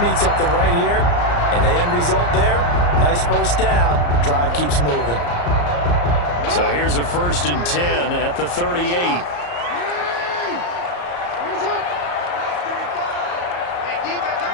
need something right here. And the end result there, nice 1st down. Drive keeps moving. So here's a 1st and 10 at the 38.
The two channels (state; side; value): late; right; 34 ms